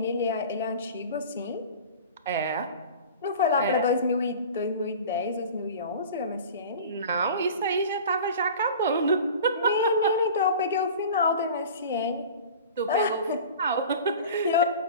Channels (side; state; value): both; inverted; correlation -0.38